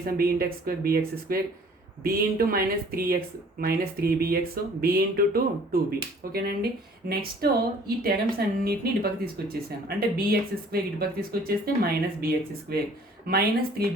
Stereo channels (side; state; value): both; normal; correlation 0.53